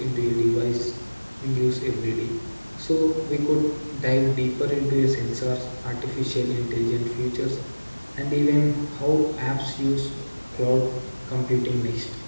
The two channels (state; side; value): inverted; both; correlation -1.00